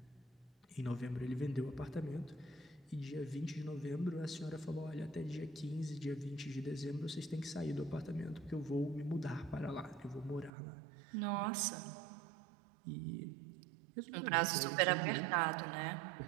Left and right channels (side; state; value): left; drops out; at 10.5 s